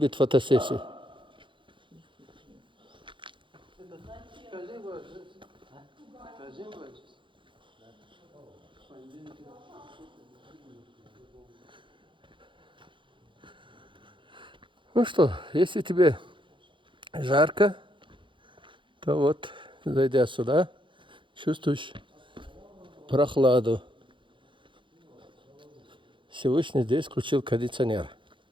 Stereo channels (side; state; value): left; late; 0.24 ms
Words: фотосессии. Ну что, если тебе жарко, то вот, зайдя сюда, чувствуешь прохладу. Всевышний здесь включил кондиционер.